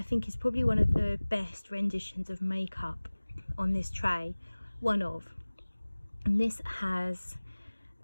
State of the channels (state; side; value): inverted; both; correlation -1.00